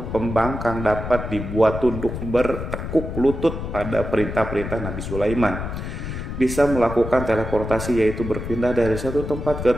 pembangkang dapat dibuat tunduk bertekuk lutut pada perintah-perintah Nabi Sulaiman. Bisa melakukan teleportasi, yaitu berpindah dari satu tempat ke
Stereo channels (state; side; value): noise; left; rumble, 6 dB below the sound